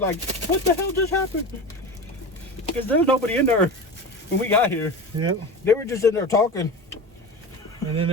what the hell just happened? Because there was nobody in there when we got here. Yep. They were just in there talking. And then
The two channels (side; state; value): both; normal; correlation 0.28